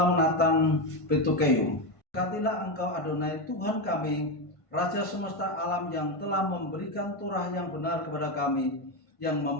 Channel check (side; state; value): right; late; 1.5 ms